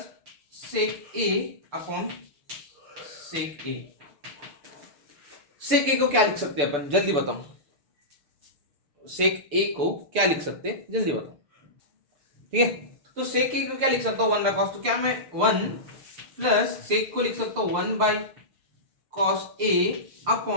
sec A upon sec A। Sec A को क्या लिख सकते हैं अपन, जल्दी बताओ, सेक A को क्या लिख सकते हैं, जल्दी बताओ, ठीक है, तो सेक A को क्या लिख सकता हूं 1 बाय कॉस, तो क्या मैं 1 प्लस सेक को लिख सकता हूं 1 बाय कॉस A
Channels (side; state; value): left; late; 6.9 ms